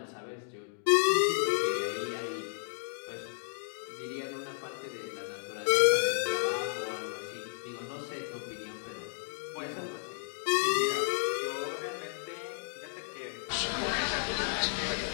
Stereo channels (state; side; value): silent; right; digital silence